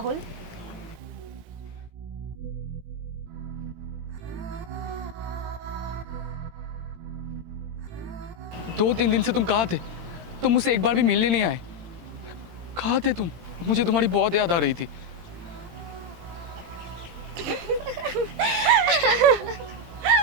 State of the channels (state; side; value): late; left; 18 ms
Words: दो तीन दिन से तुम कहाँ थे? तुम मुझसे एक बार भी मिलने नहीं आए। कहाँ थे तुम? मुझे तुम्हारी बहुत याद आ रही थी।